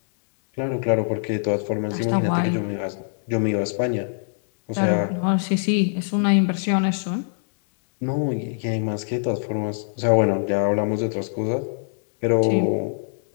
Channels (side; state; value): right; silent; digital silence